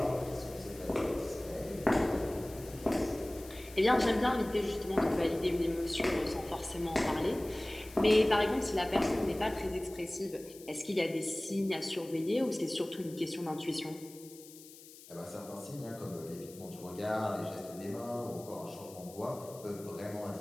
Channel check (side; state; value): left; noise; hiss, 19 dB below the sound